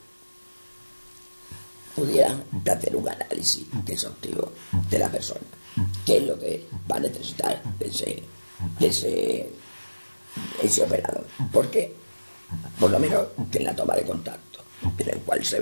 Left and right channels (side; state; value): both; inverted; correlation -1.00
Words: pudieran hacer un análisis exhaustivo de la persona, qué es lo que va a necesitar ese operador. Porque, por lo menos, que en la toma de contacto, en el cual se